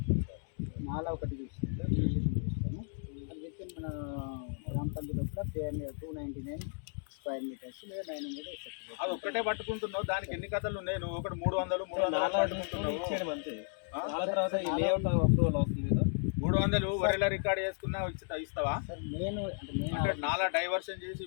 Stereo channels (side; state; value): right; silent; 55 dB below the other